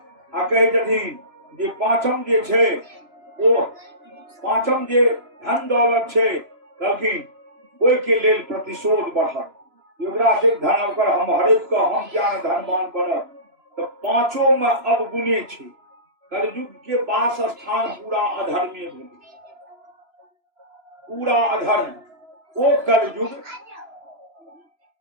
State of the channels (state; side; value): late; left; 3.0 ms